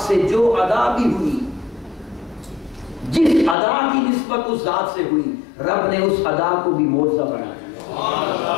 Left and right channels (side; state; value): right; drops out; at 3.6 s